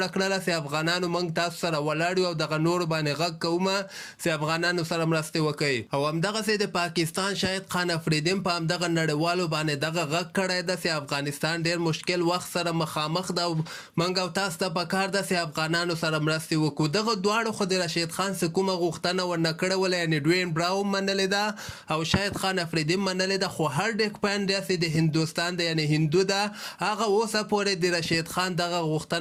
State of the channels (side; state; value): both; identical; correlation 1.00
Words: کړله چې افغانانو موږ تاسو سره ولاړ یو او دغه نورو باندې غږ کومه چې افغانانو سره مرستې وکړي. او همدغسې د پاکستان شاهد خان افریدي هم په همدغه نړیوالو باندې دغه غږ کړی ده چې افغانستان ډېر مشکل وخت سره مخامخ ده او موږ او تاسو ته پکار ده چې افغانانو سره مرستې وکړو. دغه دواړو خو د رشید خان څه کومه غوښتنه ورنه کړې وله، یعنې ډوین براو منلې ده او شاهد خان افریدي منلې ده، خو هارډک پانډیا چې د هندوستان ده یعنې هندو ده، هغه اوسه پورې د رشید خان دغه